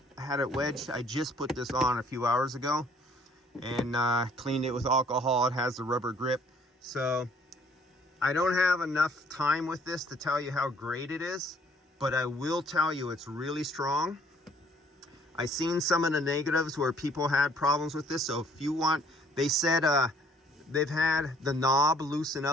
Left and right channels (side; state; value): both; normal; correlation 0.60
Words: I had it wedged, I just put this on a few hours ago and cleaned it with alcohol. It has the rubber grip. So I don't have enough time with this to tell you how great it is, but I will tell you it's really strong. I've seen some of the negatives where people had problems with this. So if you want, they said they've had the knob loosen